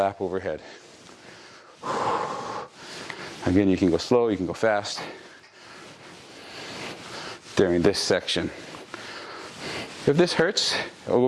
overhead. Again, you can go slow, you can go fast during this section. If this hurts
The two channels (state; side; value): identical; both; correlation 1.00